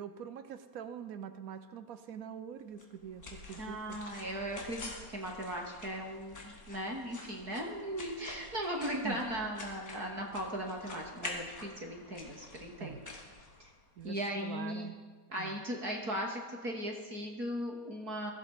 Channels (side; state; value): left; late; 4.2 ms